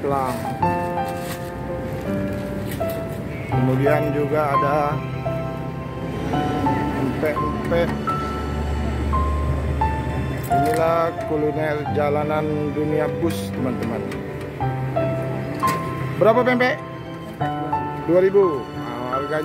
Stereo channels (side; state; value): both; identical; correlation 1.00